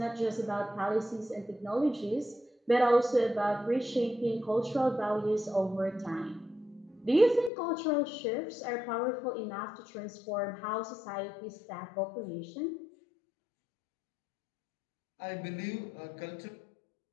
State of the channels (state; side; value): drops out; right; at 7.5 s